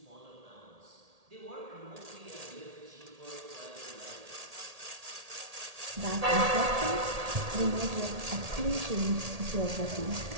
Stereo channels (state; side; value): late; left; 1.8 ms